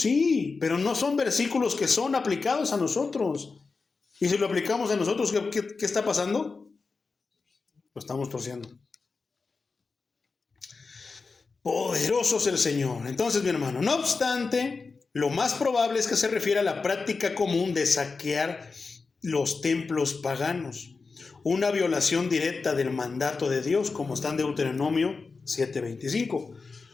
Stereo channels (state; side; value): quieter; right; 4.4 dB